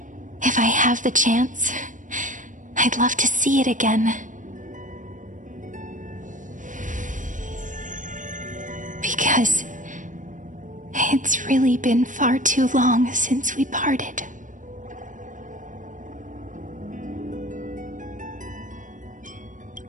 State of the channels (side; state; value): left; late; 0.37 ms